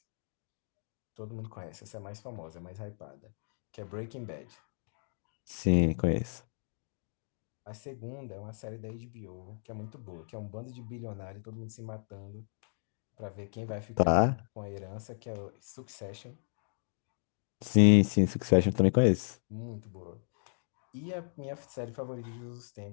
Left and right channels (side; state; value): right; silent; digital silence